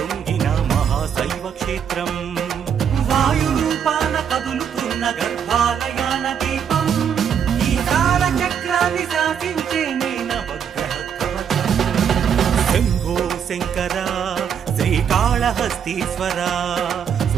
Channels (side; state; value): left; quieter; 7.9 dB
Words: మహాశైవ క్షేత్రం వాయురూపాన కదులుతున్న గర్భాలయాన దీపం ఈ కాల చక్రాన్ని శాసించే నవగ్రహ కవచం శంభో శంకర శ్రీకాళహస్తీశ్వర